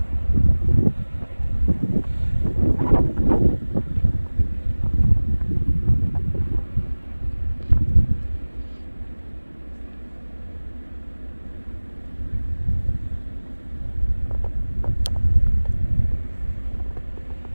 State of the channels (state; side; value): inverted; both; correlation -1.00